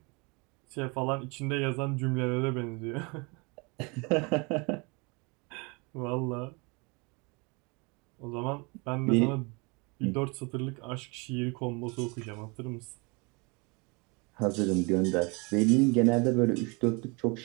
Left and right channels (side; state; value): left; quieter; 29.9 dB